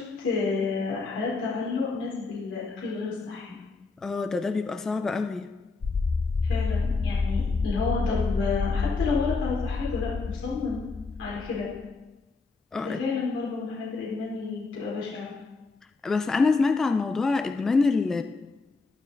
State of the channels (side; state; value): right; quieter; 4.0 dB